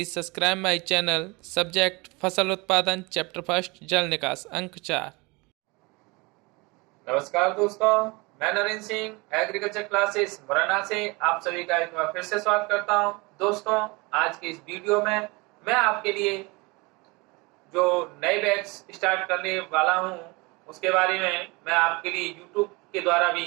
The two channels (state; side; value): quieter; left; 26.0 dB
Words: subscribe my channel. Subject फसल उत्पादन chapter first जल निकास अंक 4। नमस्कार दोस्तों, मैं नरेंद्र सिंह एग्रीकल्चर क्लासेस मुरैना से आप सभी का एक बार फिर से स्वागत करता हूं। दोस्तों, आज के इस वीडियो में मैं आपके लिए जो नए बैच स्टार्ट करने वाला हूं उसके बारे में मैं आपके लिए यूट्यूब के द्वारा